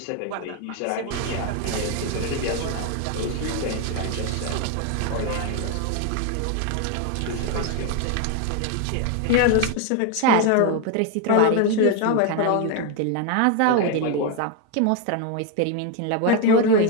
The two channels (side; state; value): both; different; correlation 0.01